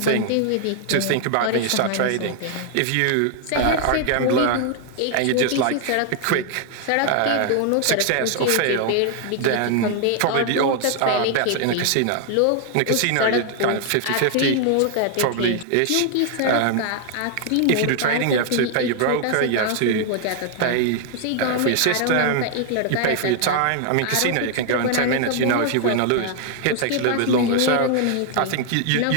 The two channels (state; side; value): different; both; correlation 0.00